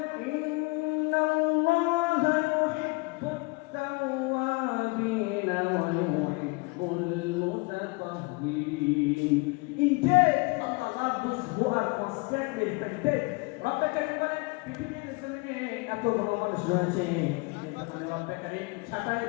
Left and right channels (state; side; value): quieter; right; 27.4 dB